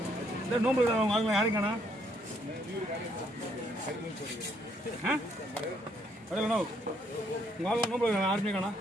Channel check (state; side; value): normal; both; correlation 0.70